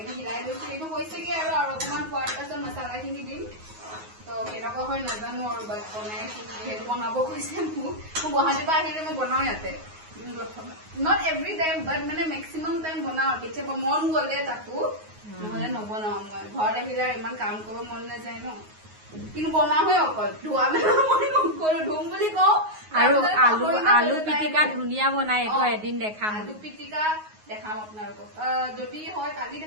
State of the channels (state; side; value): late; left; 9.5 ms